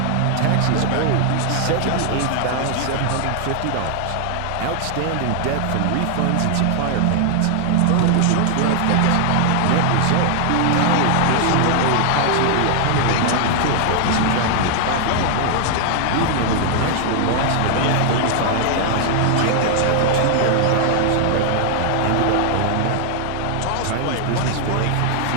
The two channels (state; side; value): different; both; correlation 0.00